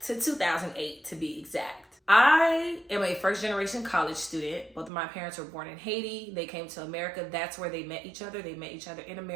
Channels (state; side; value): drops out; left; at 4.9 s